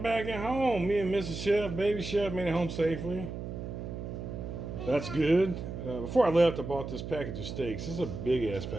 back at home. Me and Mrs. Chef, baby chef, made it home safely. That's good. Before I left, I bought this package of steaks. This is a big ass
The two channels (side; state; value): right; noise; hum, 7 dB below the sound